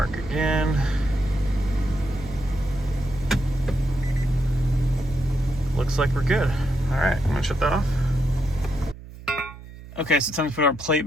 again. Looks like we're good. All right, I'm gonna shut that off. Okay, so it's time to put our plate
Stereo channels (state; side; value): noise; right; hum, 16 dB below the sound